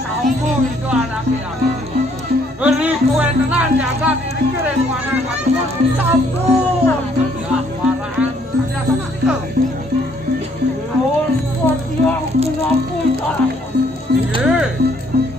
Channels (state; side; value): normal; both; correlation 0.66